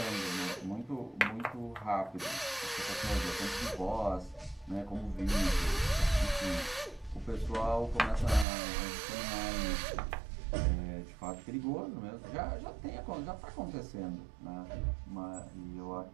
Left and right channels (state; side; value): drops out; left; at 8.5 s